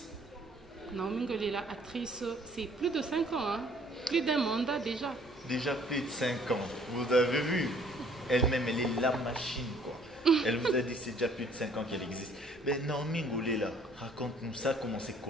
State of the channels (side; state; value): both; normal; correlation 0.58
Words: Naomi Ngolela, actrice, c'est plus de 5 ans. Hein. Plus d'un mandat déjà. Déjà plus de 5 ans. Vous avez vu? Elle-même, elle est la machine, quoi. Elle vous a dit que c'est déjà plus de 5 ans qu'elle existe. Mais Naomi Ngolela, raconte-nous ça, comment?